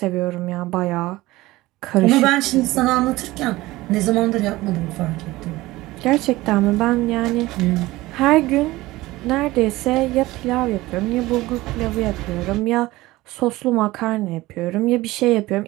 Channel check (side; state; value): left; quieter; 18.7 dB